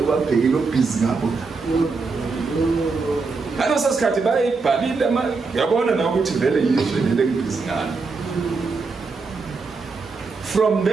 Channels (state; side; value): quieter; left; 4.3 dB